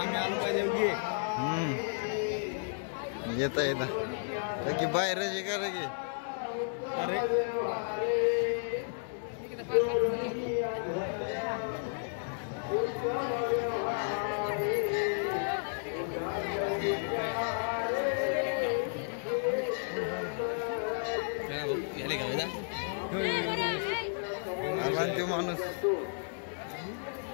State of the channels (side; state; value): right; silent; 56 dB below the other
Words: येता येता की बाहेर का लगे तो माणूस